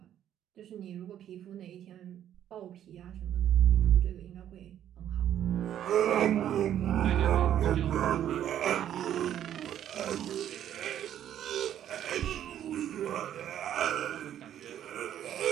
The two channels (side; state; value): left; quieter; 10.8 dB